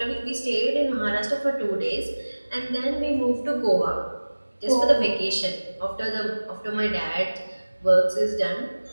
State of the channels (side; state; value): both; inverted; correlation -1.00